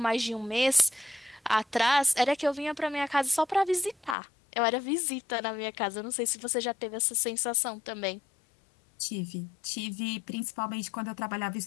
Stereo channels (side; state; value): right; drops out; at 4.2 s